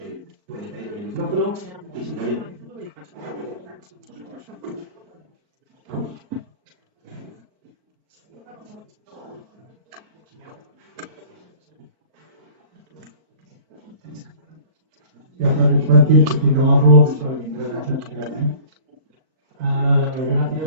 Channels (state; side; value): late; left; 4.5 ms